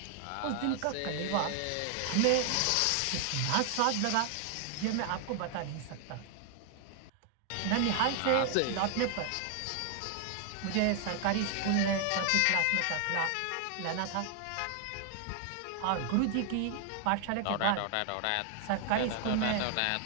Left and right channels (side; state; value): both; different; correlation 0.00